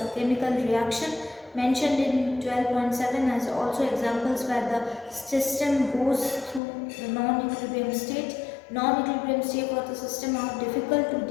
chemical reaction mentioned in 12.7 as also examples where the system goes through the non-equilibrium state. Non-equilibrium state for the system are difficult to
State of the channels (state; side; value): drops out; right; at 6.6 s